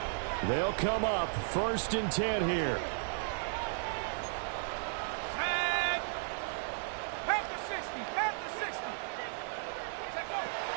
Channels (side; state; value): left; silent; digital silence